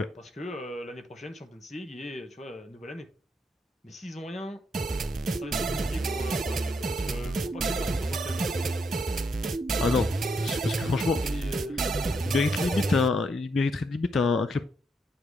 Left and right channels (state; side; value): normal; both; correlation 0.77